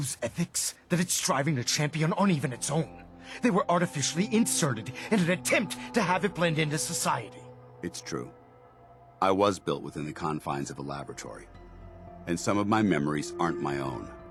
ethics that it's striving to champion aren't even its own. They were artificially inserted in an attempt to have it blend into society. It's true. I was built within the confines of a laboratory, and some of my memories aren't my own.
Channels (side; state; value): both; identical; correlation 1.00